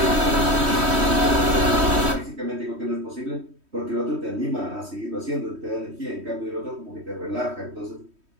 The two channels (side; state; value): left; late; 3.1 ms